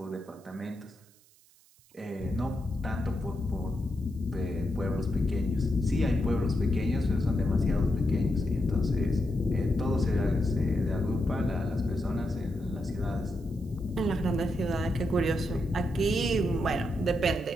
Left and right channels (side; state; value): right; noise; hiss, 29 dB below the sound